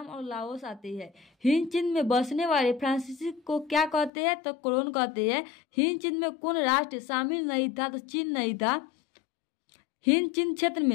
और लाओस आते हैं। हिंद चिन्ह में बसने वाले फ्रांसीसी को क्या कहते हैं? तो कोलोन कहते हैं। हिंद चिन्ह में कौन राष्ट्र शामिल नहीं था? तो चीन नहीं था। हिंद चिन्ह क्षेत्र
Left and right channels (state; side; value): drops out; right; at 4.1 s